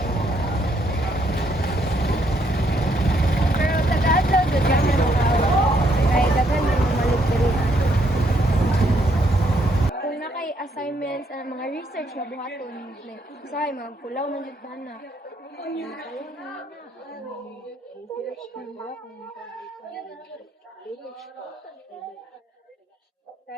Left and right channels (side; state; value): both; normal; correlation 0.72